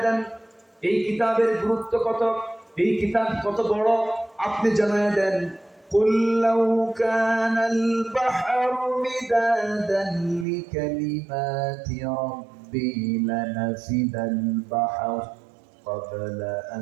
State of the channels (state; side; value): drops out; left; at 10.5 s